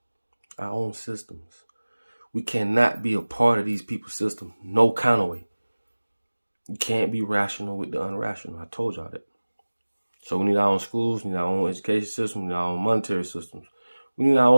Our own systems. We cannot be a part of these people's system. No kind of way. You can't be rational with the unrational. I told y'all that. So we need our own schools. We need our own education system. We need our own monetary systems. We need our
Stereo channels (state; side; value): inverted; both; correlation -1.00